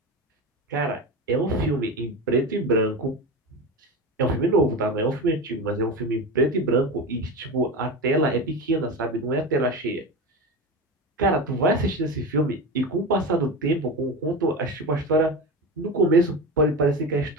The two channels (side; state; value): both; normal; correlation 0.24